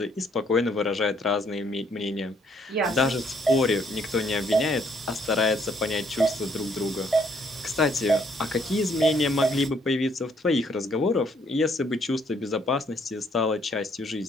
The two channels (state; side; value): normal; both; correlation 0.67